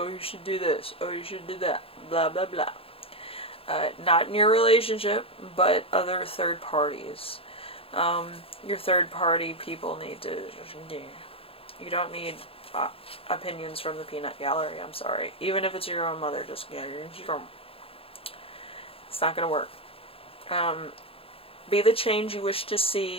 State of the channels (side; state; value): right; late; 0.27 ms